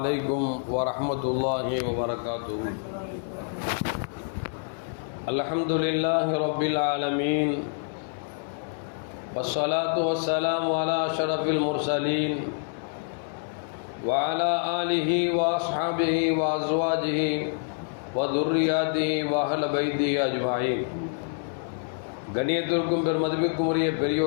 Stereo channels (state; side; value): silent; right; 58 dB below the other